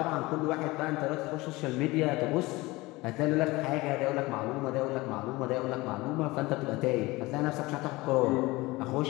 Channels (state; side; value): quieter; right; 21.3 dB